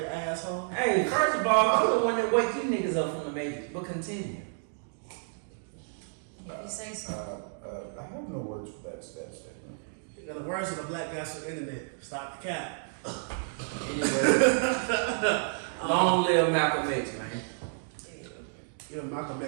asshole. Hey, first of all, I'm the one that wake you niggas up from the Matrix, but continue. If you say so. I have no words for that statement. You know, the words of the black guys on the internet. Stop the cap. Anyway, long live Malcolm X, man. Yeah, Malcolm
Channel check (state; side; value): silent; left; digital silence